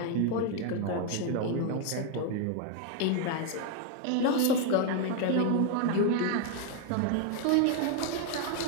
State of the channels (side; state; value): both; different; correlation 0.01